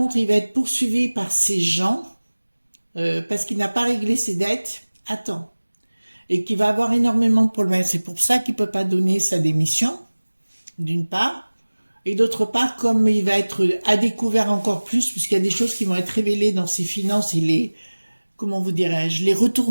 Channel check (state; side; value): inverted; both; correlation -1.00